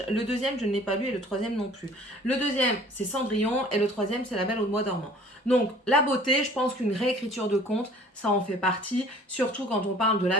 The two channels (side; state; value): both; normal; correlation 0.51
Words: Le deuxième, je ne l'ai pas lu et le troisième non plus. Le deuxième, c'est Cendrillon et le troisième, c'est La Belle au Bois dormant. Donc, la beauté, je pense qu'une réécriture de conte, ça en fait partie. Surtout quand on parle de